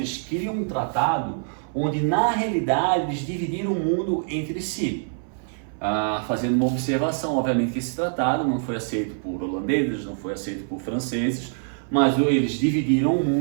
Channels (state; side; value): silent; left; 60 dB below the other